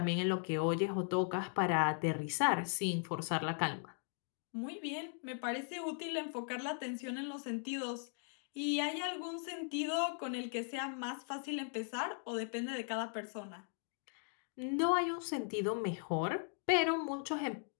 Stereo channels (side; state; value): right; silent; 52 dB below the other